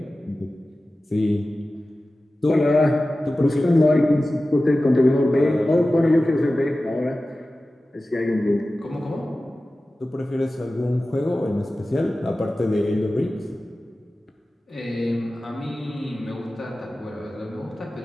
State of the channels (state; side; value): normal; both; correlation 0.95